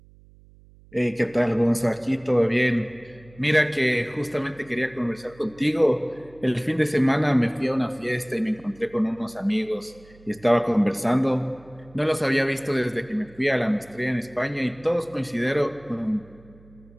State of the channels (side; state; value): right; noise; hum, 25 dB below the sound